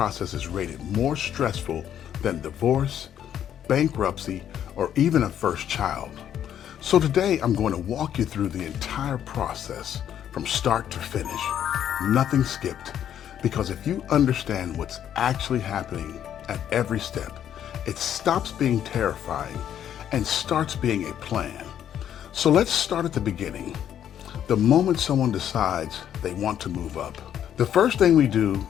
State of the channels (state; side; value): quieter; right; 10.0 dB